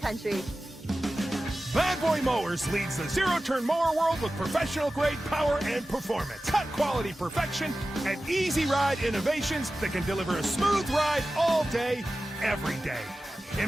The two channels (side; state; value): both; normal; correlation 0.95